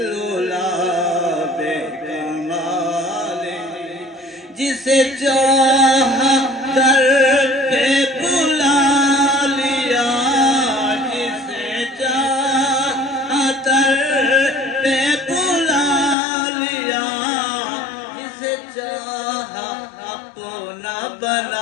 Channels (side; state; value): right; drops out; at 16.2 s